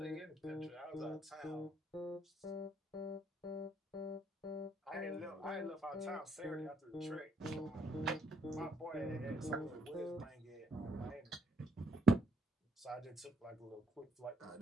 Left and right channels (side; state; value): both; normal; correlation 0.71